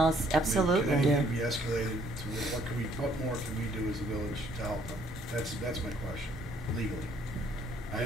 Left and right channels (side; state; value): both; normal; correlation 0.64